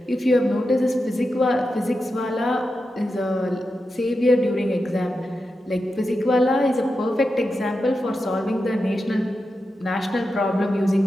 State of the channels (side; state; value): both; normal; correlation 0.89